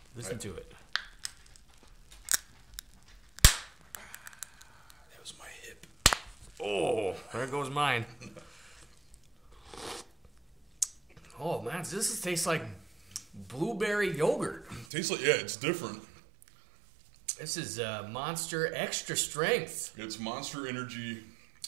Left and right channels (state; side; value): drops out; left; at 14.9 s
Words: Listen to it. That was my hip. Oh, there goes mine. Oh man, this tastes like blueberry yogurt. Tastes like, yeah, it's different. This is Monster Extra Strength. It's Monster Energy,